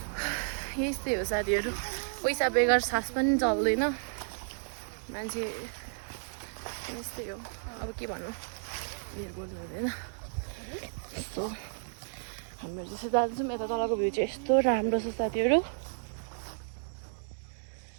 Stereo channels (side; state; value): left; silent; digital silence